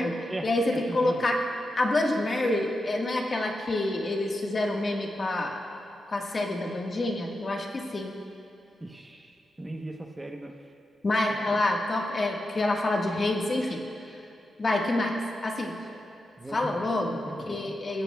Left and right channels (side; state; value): both; normal; correlation 0.88